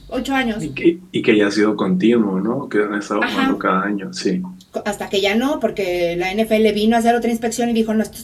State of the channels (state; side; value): identical; both; correlation 1.00